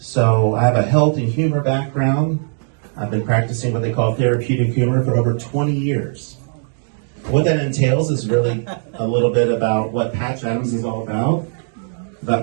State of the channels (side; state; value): left; silent; digital silence